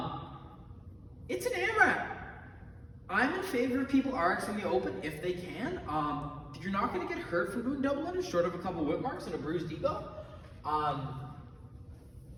It's an AMRAP. I'm in favor of people RXing the open if they can. You're not gonna get hurt from doing double unders, short of a couple whip marks and a bruised ego.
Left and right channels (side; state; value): both; identical; correlation 1.00